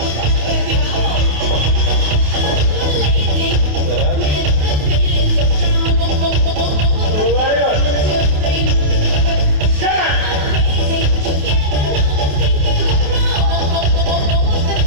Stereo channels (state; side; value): late; left; 28 ms